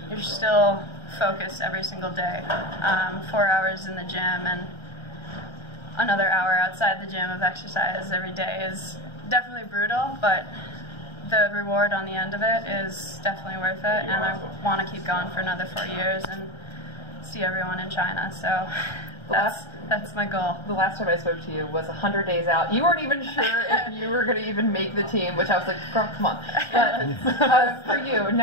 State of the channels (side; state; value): right; late; 1.3 ms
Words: you're still focused every single day. 4 hours in the gym and another hour outside the gym of exercise every day is definitely brutal, but the reward on the end of it is definitely worth it, and I want to keep going for another 4 years and see everyone in China. So that's my goal. The last time I spoke to you was 100 days out. You weren't even sure if you were going to even make the team, which I was like, girl, come on. But for you,